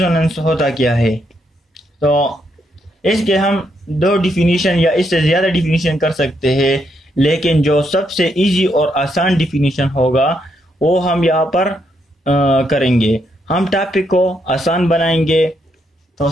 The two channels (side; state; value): both; normal; correlation 0.77